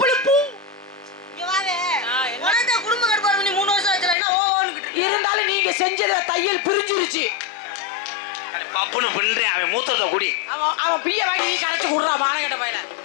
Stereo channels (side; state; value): right; drops out; at 4.2 s